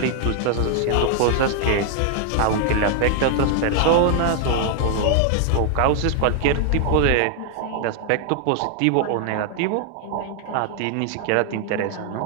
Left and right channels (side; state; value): both; different; correlation 0.00